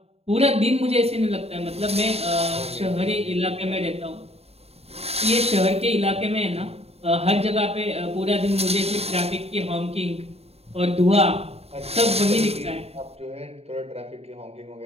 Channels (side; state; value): left; late; 0.30 ms